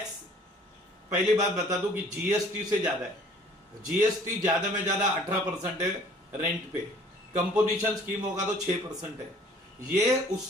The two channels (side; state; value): both; normal; correlation 0.54